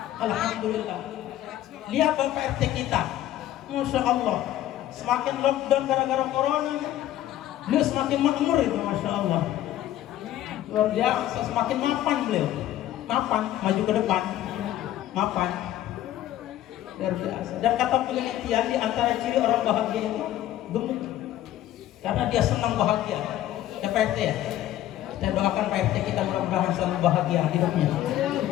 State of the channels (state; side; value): quieter; right; 13.1 dB